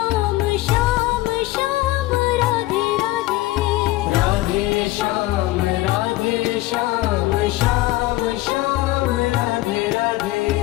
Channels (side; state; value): right; quieter; 18.1 dB